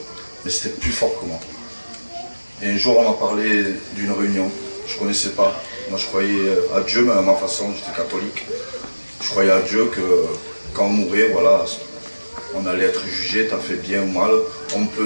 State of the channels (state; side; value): inverted; both; correlation -1.00